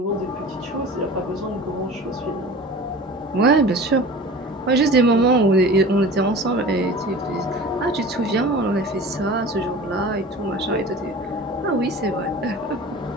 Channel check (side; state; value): both; normal; correlation 0.38